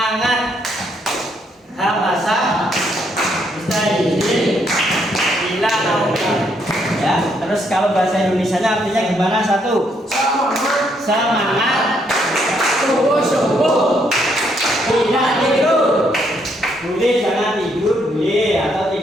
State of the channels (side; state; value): both; normal; correlation 0.73